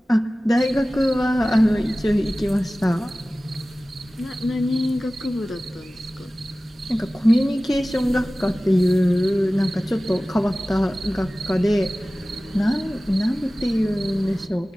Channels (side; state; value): both; normal; correlation 0.97